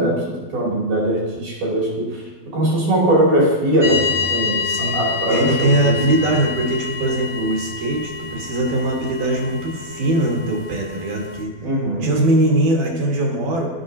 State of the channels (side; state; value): left; late; 12 ms